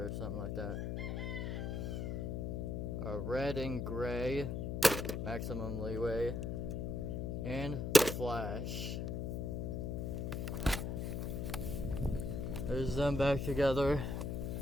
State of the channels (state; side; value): noise; left; hum, 2 dB below the sound